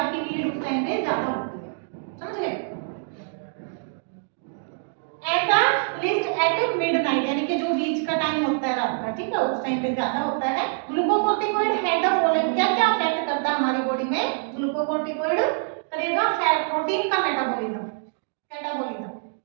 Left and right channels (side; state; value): left; silent; digital silence